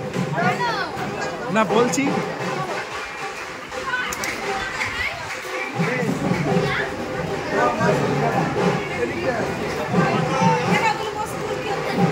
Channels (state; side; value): identical; both; correlation 1.00